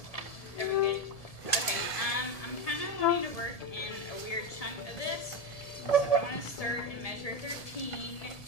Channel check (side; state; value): right; late; 1.7 ms